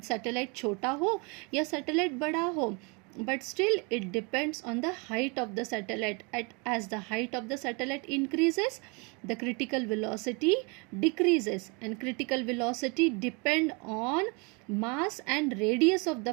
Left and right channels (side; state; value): left; quieter; 31.0 dB